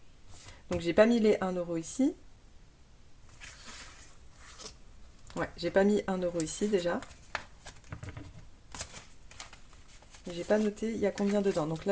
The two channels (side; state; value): both; identical; correlation 1.00